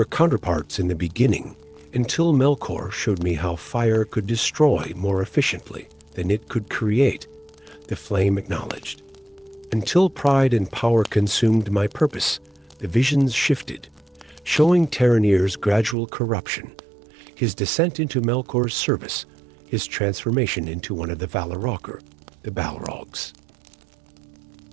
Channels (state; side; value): drops out; left; at 16.0 s